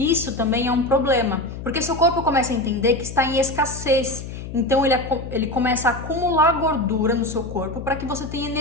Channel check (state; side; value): noise; left; hum, 10 dB below the sound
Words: também é um problema, porque seu corpo começa a entender que está em escassez. Então ele começa a acumular gordura no seu corpo para que você tenha